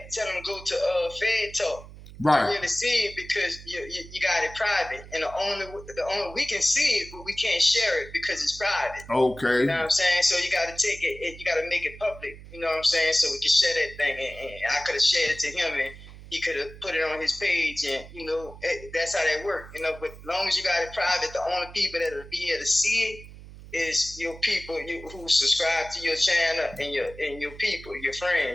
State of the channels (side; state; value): right; noise; hum, 17 dB below the sound